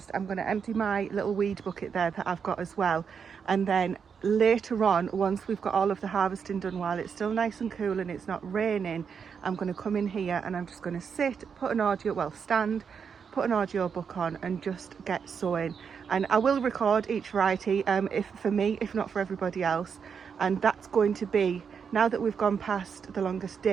I'm going to empty my little weed bucket there that I've got as well, and then later on, once we've got all of the harvesting done, while it's still nice and cool and it's not raining, I'm going to come in here and I'm just going to stand, put an audio book on and just get sowing. And I will record each variety, if not for everybody else. And that's going to be, now that we've gone past the longest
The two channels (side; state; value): left; quieter; 6.6 dB